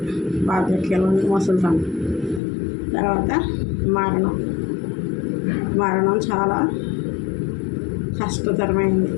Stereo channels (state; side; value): drops out; right; at 2.4 s